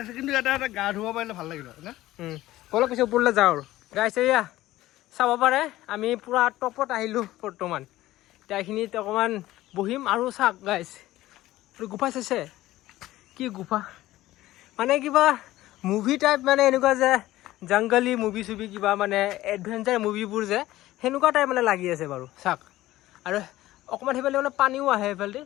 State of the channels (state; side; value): quieter; right; 16.0 dB